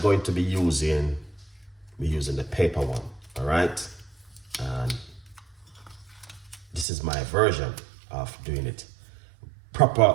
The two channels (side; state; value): left; drops out; at 6.9 s